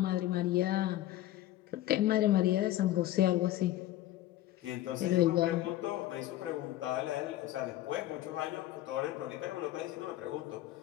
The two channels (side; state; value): right; quieter; 14.6 dB